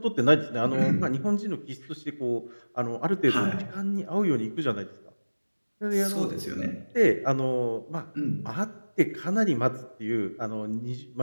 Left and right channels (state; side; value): inverted; both; correlation -1.00